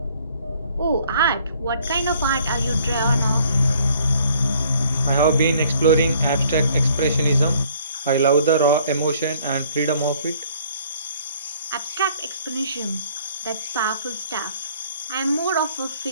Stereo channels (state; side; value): inverted; both; correlation -0.59